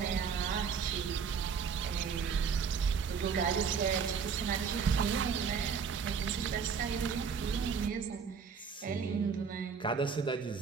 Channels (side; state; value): left; quieter; 6.2 dB